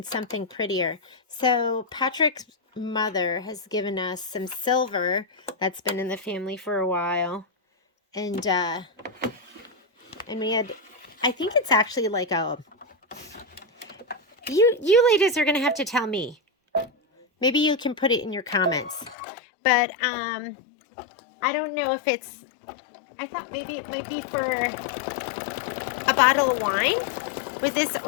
something prettier. So Patrick's mother has given us some silver that's been in the family for a while. And we had, I think it's actually like a, you ladies are going to have to tell me. Maybe you can put it in your comments. But I don't know if it's, I thought maybe it might be for a bottle of wine with this,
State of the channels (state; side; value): drops out; right; at 19.2 s